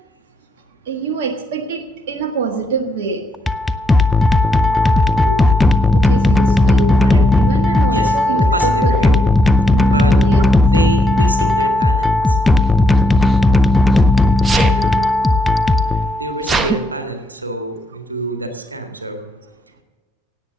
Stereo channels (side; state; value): both; normal; correlation 0.78